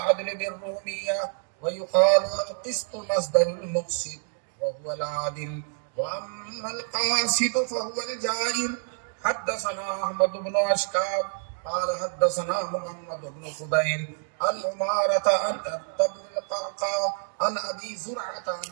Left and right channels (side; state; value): left; silent; 60 dB below the other